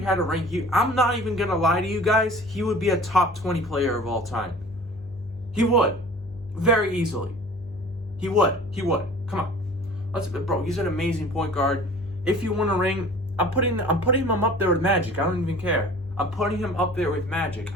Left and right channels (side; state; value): both; normal; correlation 0.45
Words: had a ring, I'm not even going to lie to you guys, he would be a top 20 player of all time. He would. Very easily. He would. Come on. Bro, he's an amazing point guard. If you want a ring, I'm putting him up there with Magic. I don't even care. I'm putting him up there with Magic.